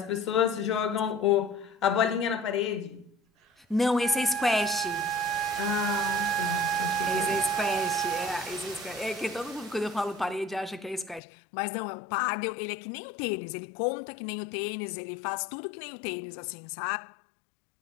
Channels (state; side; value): drops out; right; at 11.2 s